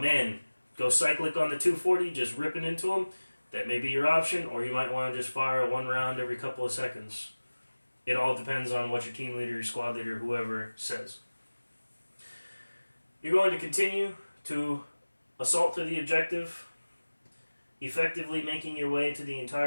go cyclic on the 240, just ripping into them, that may be your option, or you might want to just fire one round every couple of seconds. It all depends on what your team leader, your squad leader, whoever says. You're going to continue to assault to the objective, effectively making your way to the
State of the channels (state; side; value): inverted; both; correlation -1.00